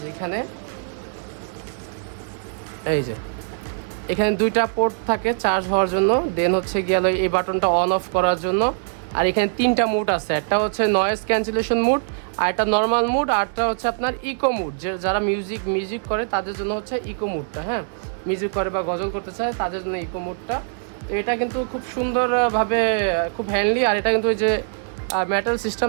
এখানে দুইটা পোর্ট থাকে চার্জ হওয়ার জন্য। দেন হচ্ছে গিয়ে এই বাটনটা অন অফ করার জন্য। আর এখানে তিনটা মুড আছে। একটা হচ্ছে নয়েজ ক্যান্সেলেশন মুড, আর একটা নর্মাল মুড, আর একটা হচ্ছে আপনার ইকো মুড। যারা মিউজিক করে তাদের জন্য হচ্ছে ইকো মুডটা। হ্যাঁ, মিউজিক করে বা গজল করতে চায় তাদের জন্য ইকো মুডটা। এটা কিন্তু খুব সুন্দরভাবে, খুব হ্যান্ডলি। আর এটা কিন্তু এই যে মেটাল সিস্টেম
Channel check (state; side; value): silent; left; digital silence